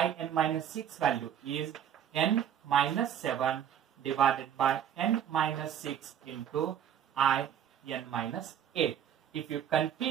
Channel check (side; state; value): left; quieter; 9.4 dB